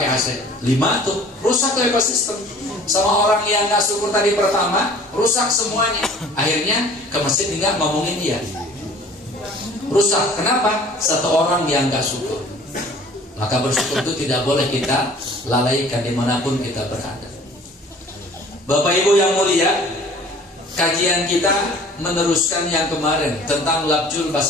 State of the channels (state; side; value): normal; both; correlation 0.49